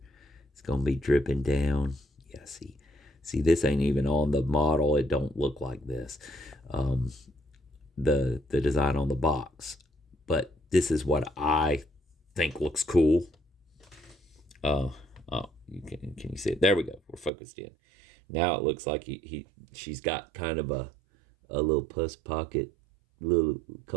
It's gonna be dripping down. Yeah, see, this ain't even on the model. It don't look like this. The design on the box, but this is what I think looks cool. Oh, can you see it? There we go. We're focused in. Now it looks like she's got kind of a little pus pocket, little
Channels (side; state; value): left; drops out; at 17.3 s